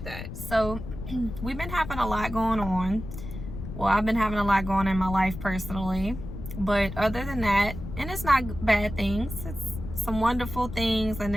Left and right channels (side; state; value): left; noise; rumble, 9 dB below the sound